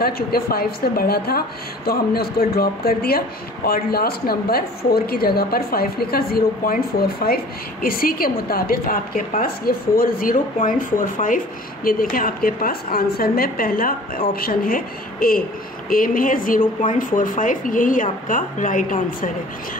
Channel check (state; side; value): normal; both; correlation 0.47